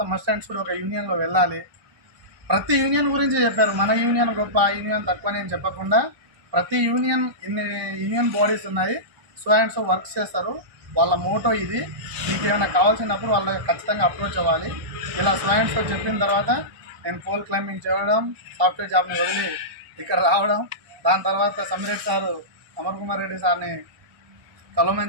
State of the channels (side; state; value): left; late; 1.2 ms